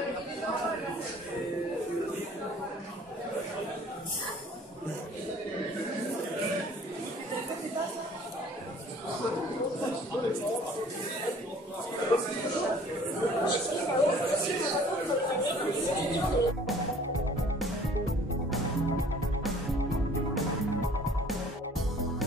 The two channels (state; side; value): normal; both; correlation 0.53